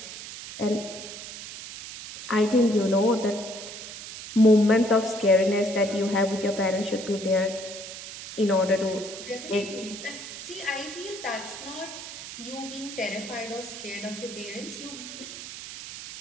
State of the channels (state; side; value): noise; right; hiss, 11 dB below the sound